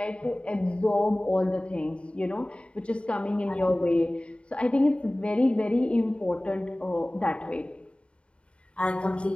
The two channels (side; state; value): right; late; 0.058 ms